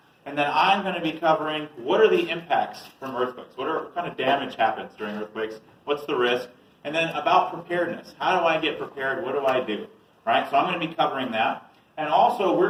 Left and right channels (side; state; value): both; identical; correlation 1.00